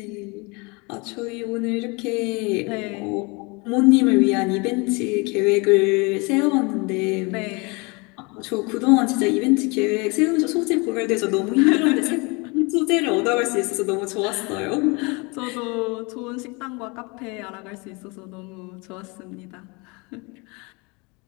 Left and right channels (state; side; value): quieter; right; 28.4 dB